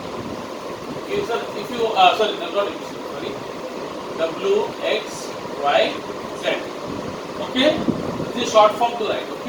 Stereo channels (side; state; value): both; identical; correlation 1.00